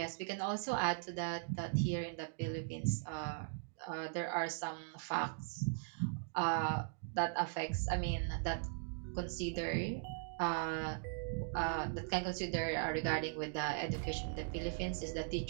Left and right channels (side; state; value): left; silent; digital silence